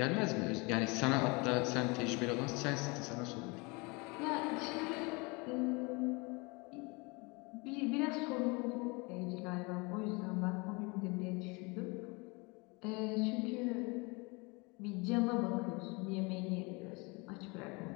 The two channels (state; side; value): quieter; right; 28.0 dB